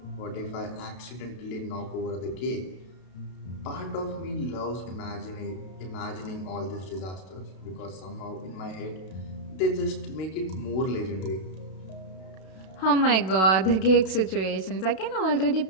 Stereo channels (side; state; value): right; late; 32 ms